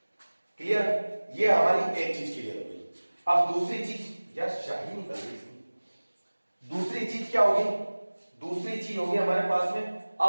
Clear, ये हमारी एक चीज क्लियर हो गई। अब दूसरी चीज, यार शाही निकल गई इसकी। दूसरी चीज क्या होगी, दूसरी चीज होगी हमारे पास में,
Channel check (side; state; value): both; inverted; correlation -1.00